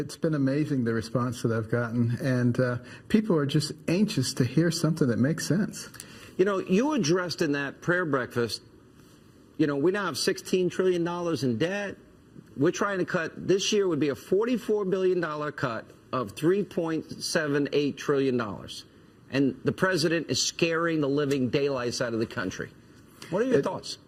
been amazing, the response that I've gotten, and people are just anxious to hear something that makes sense. You know, you addressed in that prayer breakfast, you know, we now have $16 trillion in debt. We're trying to cut, this year would be a $44 billion cut of $3.78 trillion. And the president is scaring the living daylights out of the country. What are your thoughts?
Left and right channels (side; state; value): both; identical; correlation 1.00